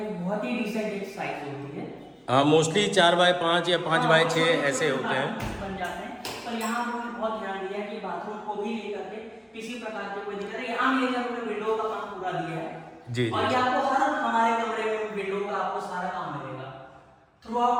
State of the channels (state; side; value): identical; both; correlation 1.00